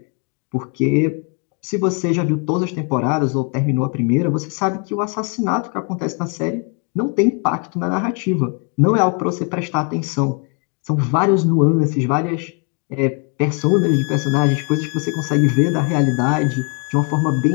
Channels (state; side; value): quieter; right; 34.1 dB